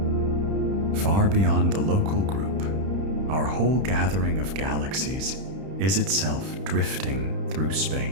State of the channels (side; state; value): left; late; 31 ms